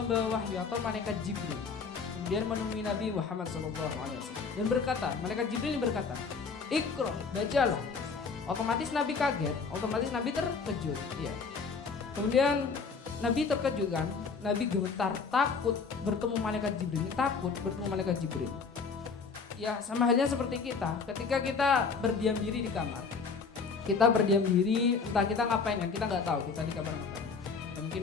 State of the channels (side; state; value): right; quieter; 5.1 dB